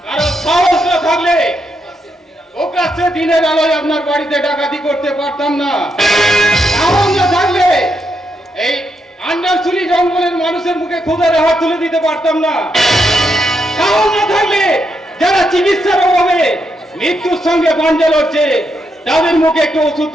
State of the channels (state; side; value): normal; both; correlation 0.81